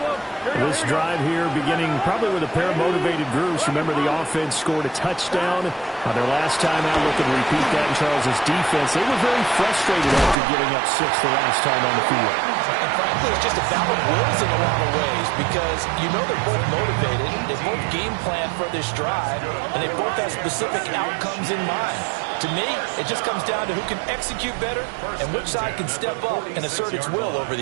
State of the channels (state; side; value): drops out; left; at 10.4 s